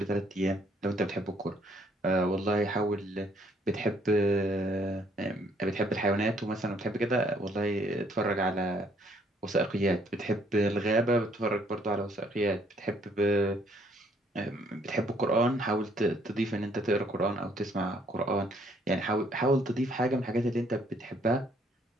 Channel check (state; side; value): normal; both; correlation 0.66